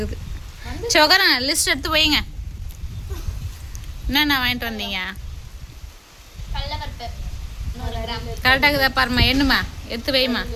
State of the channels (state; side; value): identical; both; correlation 1.00